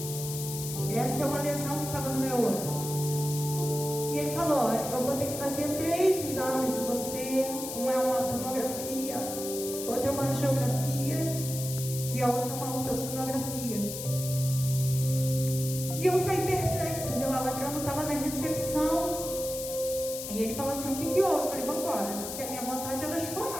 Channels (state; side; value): noise; left; hiss, 7 dB below the sound